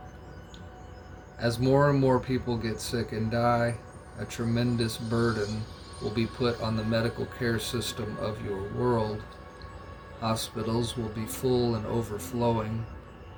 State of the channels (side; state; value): both; identical; correlation 1.00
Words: As more and more people get sick and die, a tremendous burden will be put on the medical care system of your world. Hospitals will be full and overflowing.